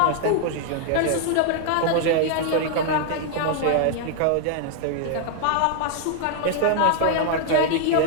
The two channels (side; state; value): both; different; correlation 0.00